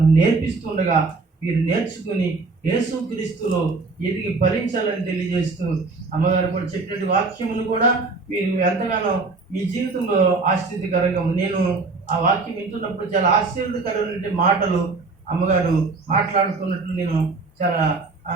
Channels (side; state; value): left; quieter; 3.9 dB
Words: నేర్పిస్తుండగా మీరు నేర్చుకుని యేసుక్రీస్తులో ఎదిగి ఫలించాలని తెలియజేస్తూ, అమ్మగారు కూడా చెప్పినట్టు వాక్యమును కూడా మీరు ఎంతగానో మీ జీవితంలో ఆశ్చర్యకరంగా, నేను ఆ వాక్యం వింటున్నప్పుడు చాలా ఆశ్చర్యకరమైన మాటలు అమ్మగారు మాట్లాడుతున్నట్లు నేను చాలా